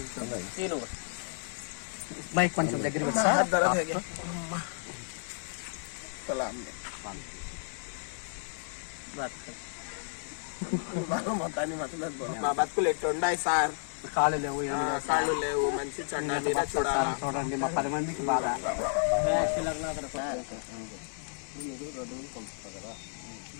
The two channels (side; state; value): right; silent; digital silence